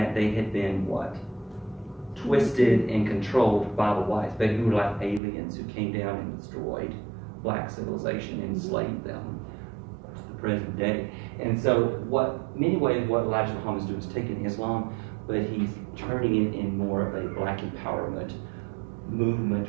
they had been what? Twisted and controlled by the whites, but who were like aliens who came down and destroyed black civilization and enslaved them to the present day. And so many ways what Elijah Muhammad is doing is taking Islam, but he's turning it in more of a black empowerment movement,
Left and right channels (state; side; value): drops out; left; at 5.2 s